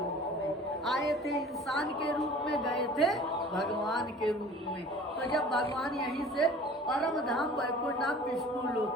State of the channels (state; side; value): normal; both; correlation 0.45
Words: में आए थे, इंसान के रूप में गए थे, भगवान के रूप में। तो जब भगवान यहीं से परम धाम वैकुंठ धाम विष्णु